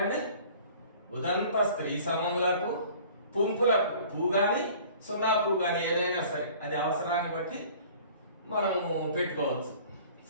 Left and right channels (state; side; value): inverted; both; correlation -0.48